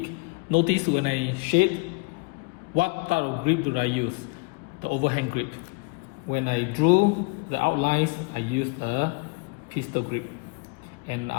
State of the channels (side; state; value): right; quieter; 29.8 dB